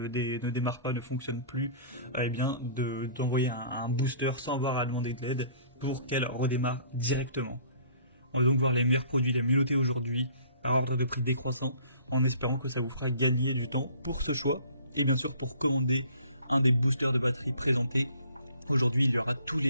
démarre pas, ne fonctionne plus, eh bien d'envoyer un booster sans avoir à demander de l'aide pour qu'elle redémarre directement. On va donc voir les meilleurs produits les mieux notés aujourd'hui, par ordre de prix décroissant, en espérant que ça vous fera gagner du temps pour ce choix, et bien sûr pour commander un des boosters de batterie présentés. Aujourd'hui, il y aura tous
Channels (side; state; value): both; inverted; correlation -0.52